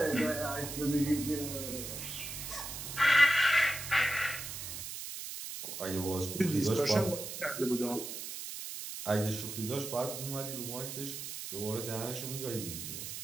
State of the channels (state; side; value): noise; right; hiss, 7 dB below the sound